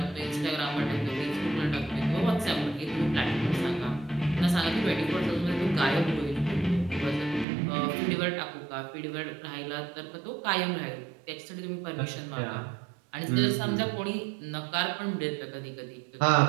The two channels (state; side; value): drops out; left; at 7.5 s